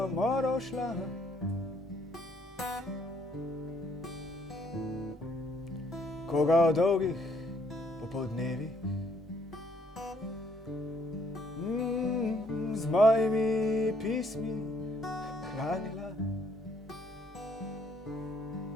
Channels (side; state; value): both; normal; correlation 0.67